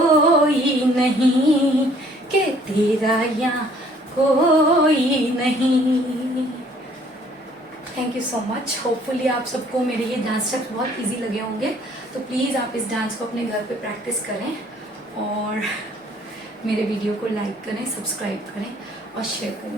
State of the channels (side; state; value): both; normal; correlation 0.59